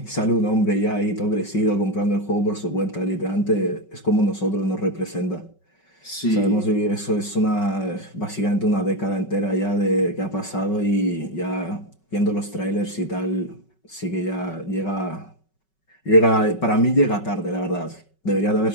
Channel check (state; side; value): late; right; 5.3 ms